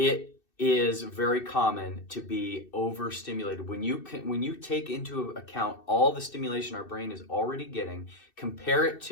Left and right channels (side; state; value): right; late; 2.6 ms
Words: is very common to be overstimulated. When you take into account all the stimulation our brain is already getting, compare it